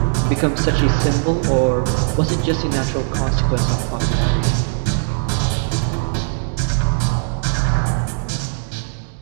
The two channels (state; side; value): silent; left; digital silence